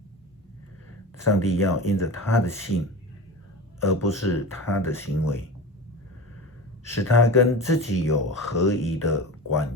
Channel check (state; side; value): normal; both; correlation 0.29